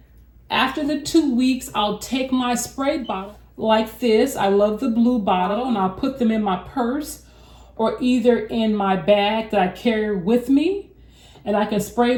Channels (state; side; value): identical; both; correlation 1.00